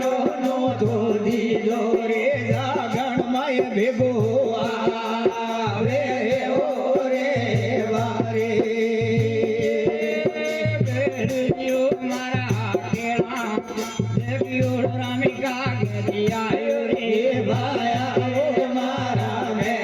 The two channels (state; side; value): identical; both; correlation 1.00